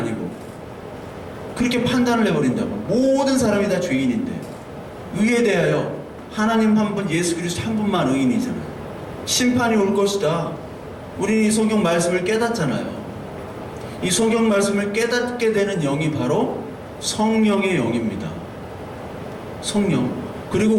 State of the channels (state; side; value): identical; both; correlation 1.00